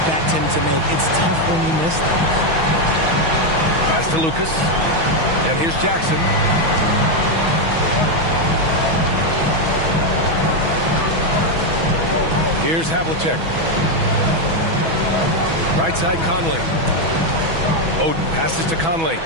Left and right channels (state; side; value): late; left; 6.1 ms